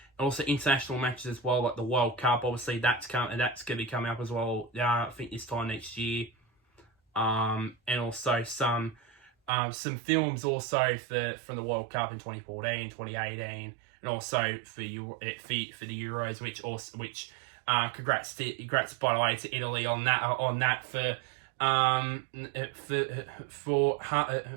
Also international matches as well, like the World Cup. Obviously, that's going to be coming up as well. I think this time next year. And also some films also from the World Cup in 2014, 2018, and also for the Euros, which congrats by the way to Italy on that for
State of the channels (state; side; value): drops out; left; at 9.5 s